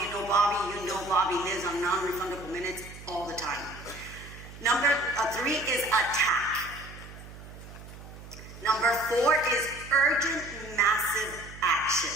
you know Bobby, Bobby lives on non-refundable minutes all the time. Number 3 is attack. Number 4 is urgent, massive action.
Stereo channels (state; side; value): noise; right; hum, 15 dB below the sound